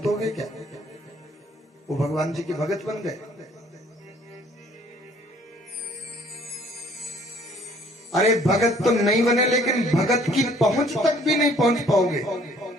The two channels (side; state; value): both; normal; correlation 0.58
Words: हो गए क्या? वो भगवान जी के भगत बन गए। अरे भगत तो नहीं बने, लेकिन भगत की पहुंच तक भी नहीं पहुंच पाओगे।